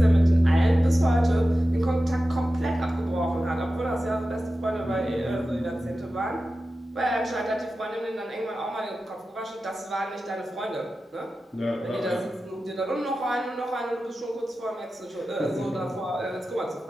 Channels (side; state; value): both; normal; correlation 0.93